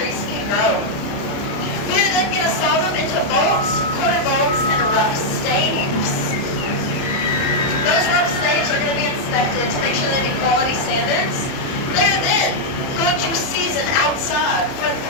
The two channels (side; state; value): right; late; 30 ms